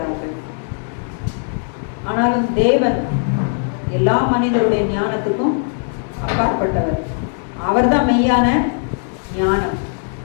ஆனாலும் தேவன் எல்லா மனிதருடைய ஞானத்துக்கும் அப்பாற்பட்டவர். அவர் தான் மெய்யான ஞானம்.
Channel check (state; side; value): silent; right; 67 dB below the other